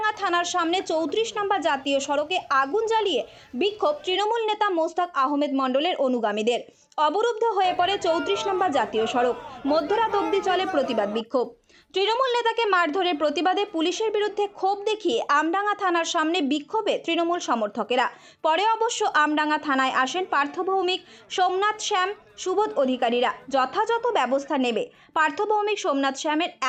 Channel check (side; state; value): both; identical; correlation 1.00